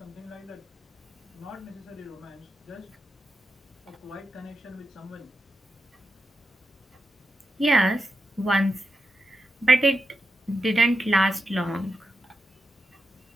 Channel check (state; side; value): normal; both; correlation 0.87